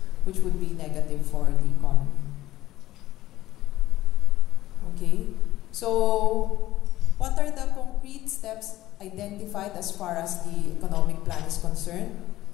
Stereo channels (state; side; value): quieter; right; 15.4 dB